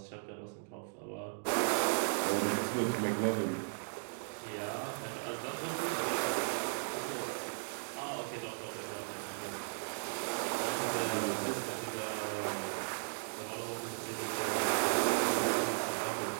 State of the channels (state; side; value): silent; left; digital silence